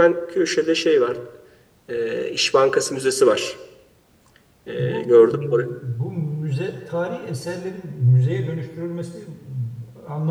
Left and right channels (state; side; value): identical; both; correlation 1.00